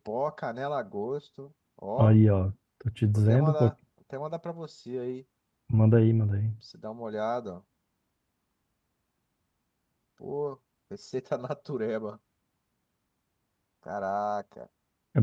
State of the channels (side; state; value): both; identical; correlation 1.00